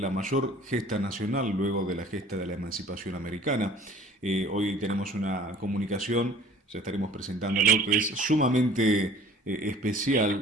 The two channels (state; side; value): normal; both; correlation 0.50